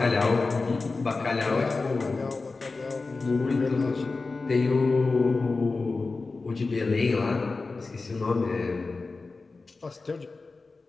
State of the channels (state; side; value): quieter; right; 3.8 dB